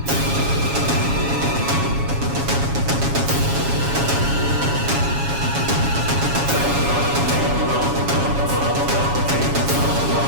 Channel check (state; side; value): late; left; 7.2 ms